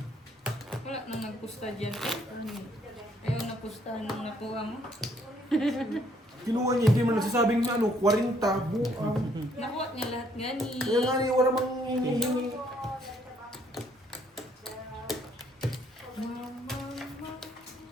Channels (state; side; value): normal; both; correlation 0.66